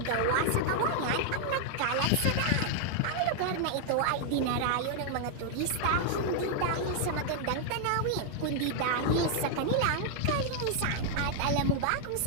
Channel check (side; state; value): both; different; correlation 0.00